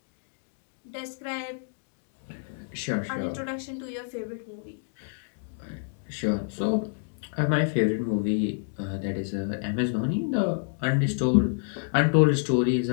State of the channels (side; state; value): right; silent; digital silence